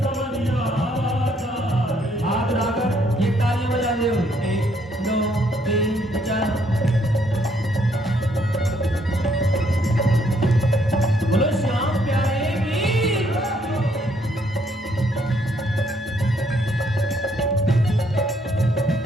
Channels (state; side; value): normal; both; correlation 0.69